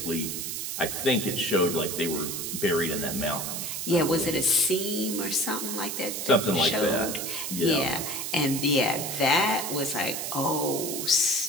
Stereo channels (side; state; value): right; noise; hiss, 4 dB below the sound